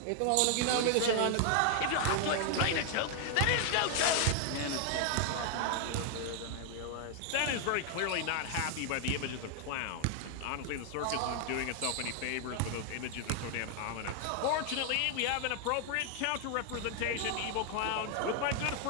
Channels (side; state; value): both; different; correlation 0.00